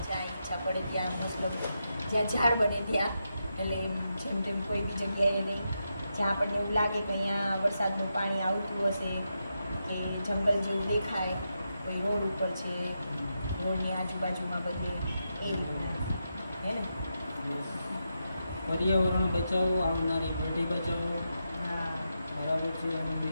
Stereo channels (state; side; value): inverted; both; correlation -0.86